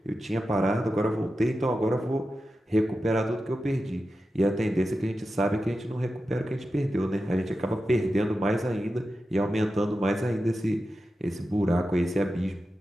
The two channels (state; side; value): normal; both; correlation 0.91